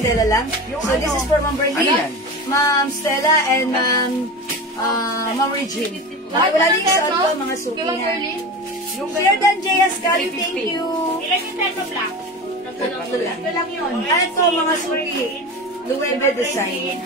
lang. So this is for Ma'am Ano Berlin, yan? Ma'am Stella, and Ma'am Regine. Okay, wala din sa ko, mga suki Kay Ma'am na. Berlin? Sir Dan J. Ascali, thank you. Ilan yung terno black? Tatlo lang. Ito lang yun. Ano to mga suki? Luwebe design.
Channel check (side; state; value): both; normal; correlation 0.28